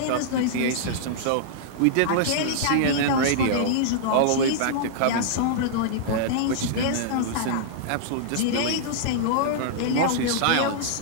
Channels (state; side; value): different; both; correlation -0.02